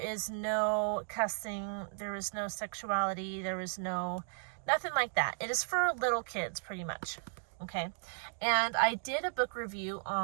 no cussing, there is no sexuality, there is nothing like that. It is for little kids, pretty much, okay? And I did a book review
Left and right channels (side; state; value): left; silent; digital silence